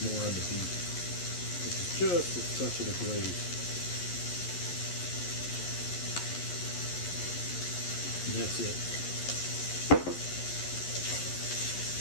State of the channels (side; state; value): right; late; 11 ms